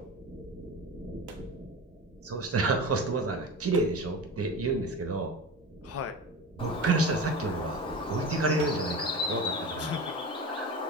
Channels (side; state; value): both; normal; correlation 0.29